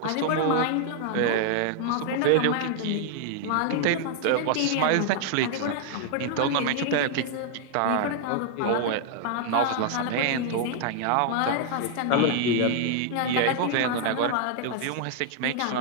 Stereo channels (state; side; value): different; both; correlation 0.00